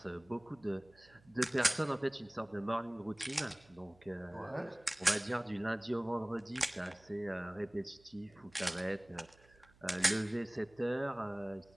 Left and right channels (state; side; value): noise; right; hum, 27 dB below the sound